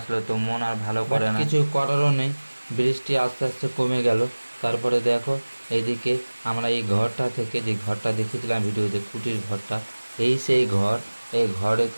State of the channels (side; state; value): both; inverted; correlation -1.00